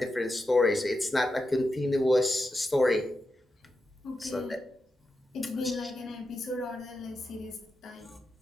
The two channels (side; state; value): both; normal; correlation 0.88